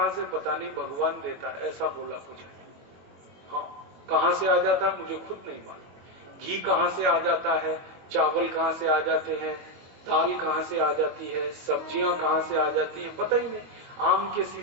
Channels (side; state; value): left; late; 22 ms